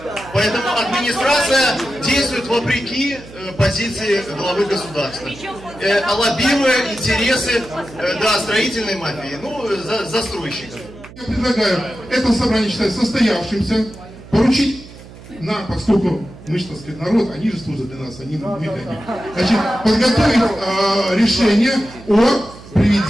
Поэтому администрация действует вопреки позиции главы государства, лоббируя интересы строительной мафии, застройщиков. Я предлагаю это собрание считать состоявшимся, поручить нам, поскольку мы, так сказать, народ, они же служат для нас, они мы для них. Значит, подготовить решение о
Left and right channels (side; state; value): right; noise; hum, 18 dB below the sound